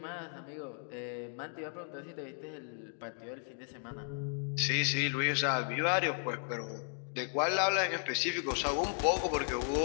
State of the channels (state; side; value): silent; right; 54 dB below the other